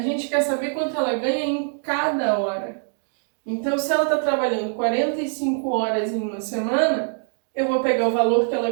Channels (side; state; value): left; silent; 63 dB below the other